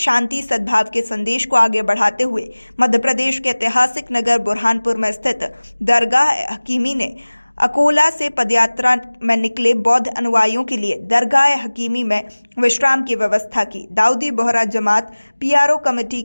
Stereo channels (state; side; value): inverted; both; correlation -1.00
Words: सद्भाव के संदेश को आगे बढ़ाते हुए मध्य प्रदेश के ऐतिहासिक नगर बुरहानपुर में स्थित दरगाह हकीमी ने अकोला से पदयात्रा में निकले बौद्ध अनुयायियों के लिए दरगाह हकीमी में विश्राम की व्यवस्था की। दाऊदी बोहरा जमात पीआरओ कमेटी